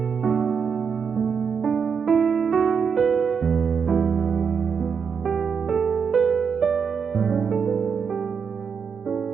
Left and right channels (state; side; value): quieter; left; 6.4 dB